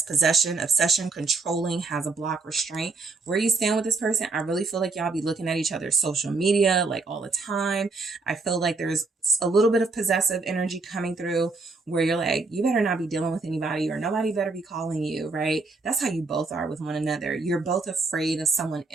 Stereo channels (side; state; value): left; quieter; 3.8 dB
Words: possession, obsession, controlling, has a block, restraint. Where you stand with this person, I really feel like y'all be looking at each other's social media like all the time. I feel like there's a little bit of possessive energy coming through where you're like, you better not be dealing with anybody or nobody better be calling you, right? That's how you both are with one another. You're both afraid of someone